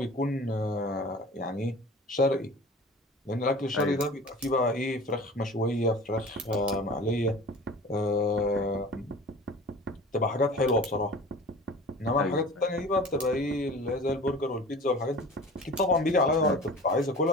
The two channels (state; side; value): normal; both; correlation 0.40